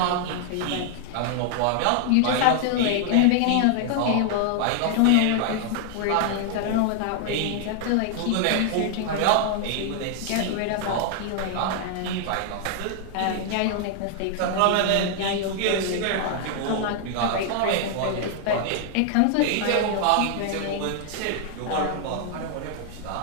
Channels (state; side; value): different; both; correlation 0.00